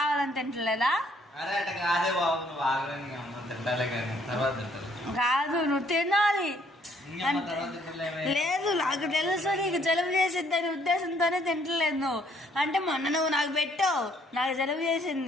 తింటలేదా? కాదు నువ్వు తినాలి. లేదు నాకు తెలుసు నీకు జలుబు చేసిద్ది అనే ఉద్దేశంతోనే తింటలేదు నువ్వు. అంటే మొన్న నువ్వు నాకు పెట్టావు, నాకు జలుబు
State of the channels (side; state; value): both; normal; correlation 0.65